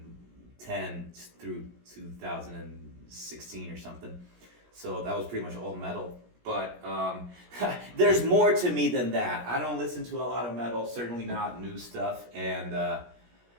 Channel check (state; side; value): late; left; 17 ms